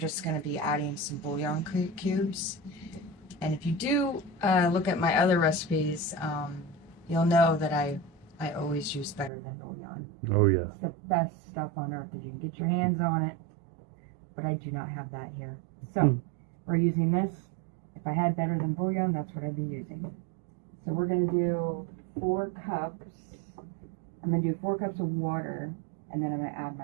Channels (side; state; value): left; drops out; at 9.3 s